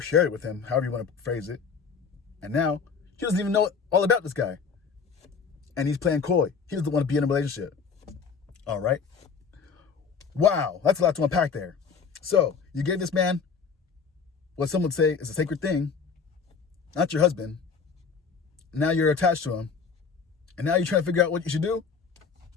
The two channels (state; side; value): quieter; right; 5.7 dB